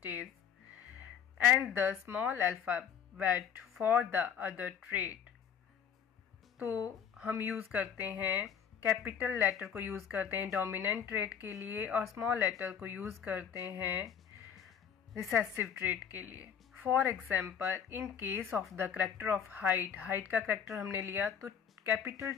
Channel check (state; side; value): quieter; right; 8.0 dB